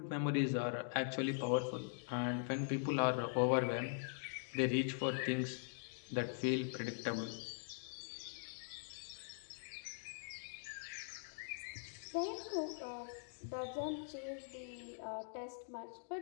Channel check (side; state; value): right; silent; digital silence